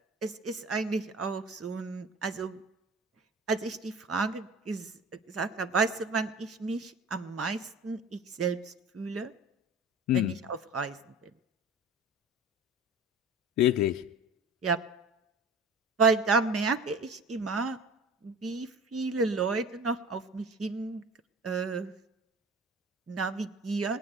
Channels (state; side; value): normal; both; correlation 0.38